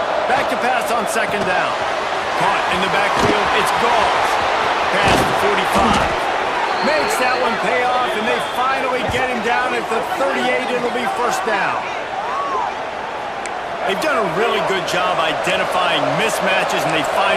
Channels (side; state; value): both; identical; correlation 1.00